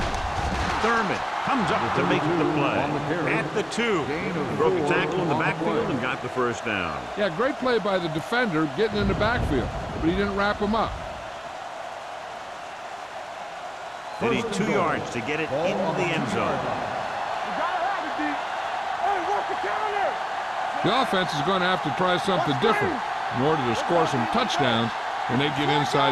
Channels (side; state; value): both; identical; correlation 1.00